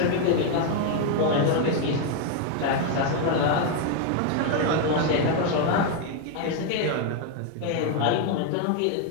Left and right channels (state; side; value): different; both; correlation 0.01